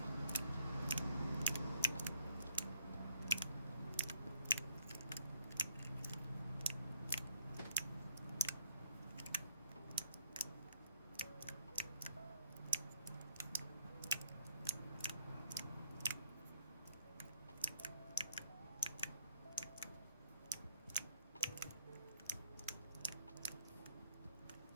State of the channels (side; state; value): both; inverted; correlation -0.63